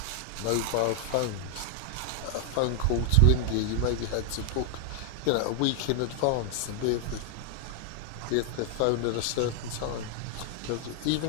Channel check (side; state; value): both; different; correlation 0.00